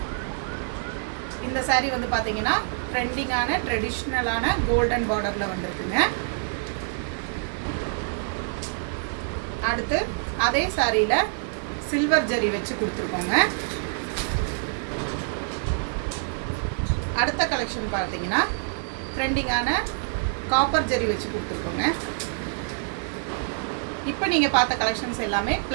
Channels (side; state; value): left; silent; digital silence